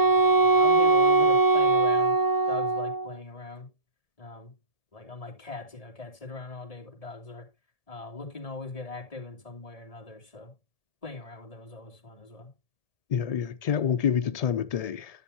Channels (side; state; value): right; late; 1.7 ms